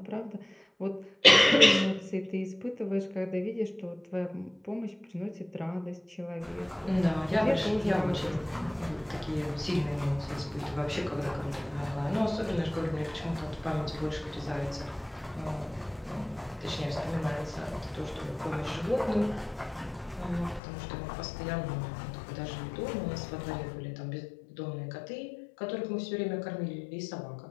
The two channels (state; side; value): drops out; right; at 20.6 s